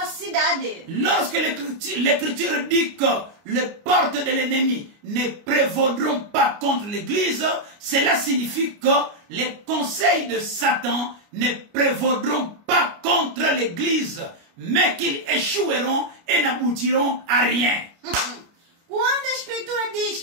a cidade. Lorsque l'écriture dit que les portes de l'ennemi ne prévaudront pas contre l'église, cela signifie que les conseils de Satan ne prévaudront pas contre l'église, mais qu'ils échoueront et n'aboutiront à rien. Quando a escritura diz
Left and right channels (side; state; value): left; late; 29 ms